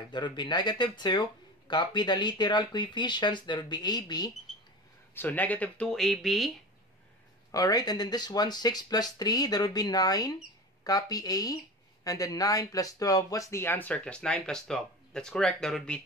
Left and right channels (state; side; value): normal; both; correlation 0.31